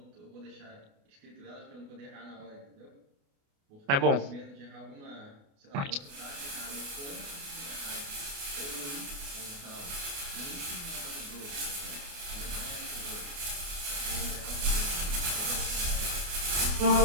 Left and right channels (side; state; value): left; late; 28 ms